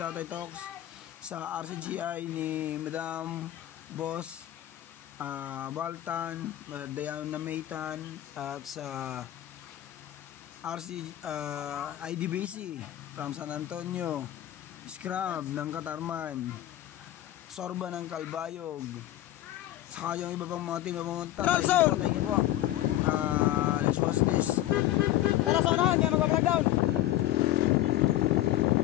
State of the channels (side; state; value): right; quieter; 13.9 dB